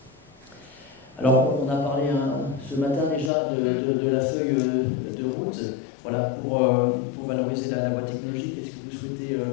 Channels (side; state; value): right; drops out; at 3.3 s